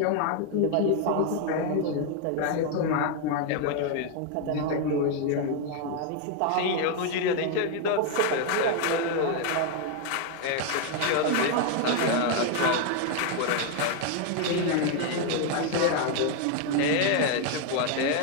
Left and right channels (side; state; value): both; different; correlation 0.01